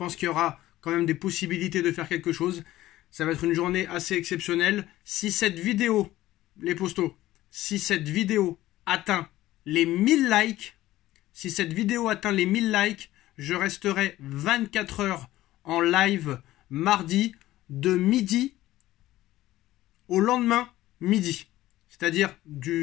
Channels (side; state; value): right; quieter; 15.6 dB